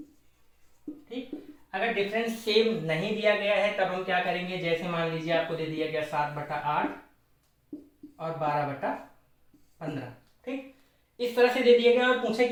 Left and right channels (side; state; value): both; identical; correlation 1.00